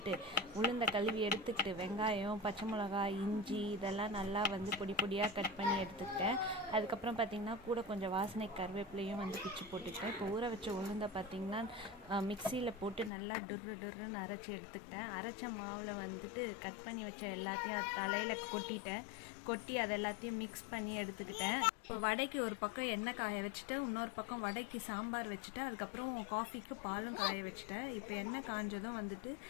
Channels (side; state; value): right; drops out; at 13.1 s